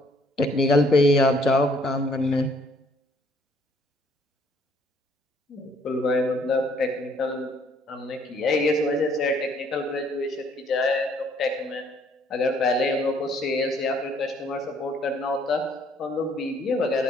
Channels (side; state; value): both; normal; correlation 0.63